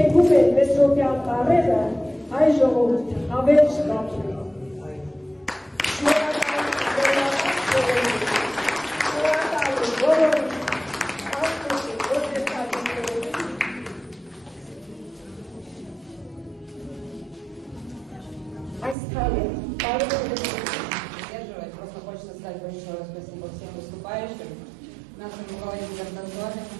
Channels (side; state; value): left; drops out; at 18.9 s